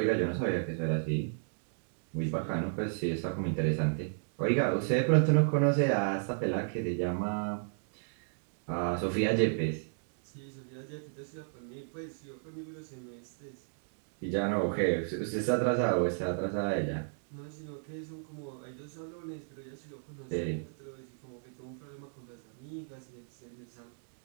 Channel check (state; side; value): silent; left; digital silence